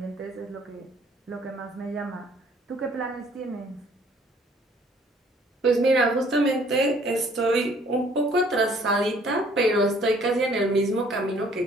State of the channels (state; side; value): normal; both; correlation 0.59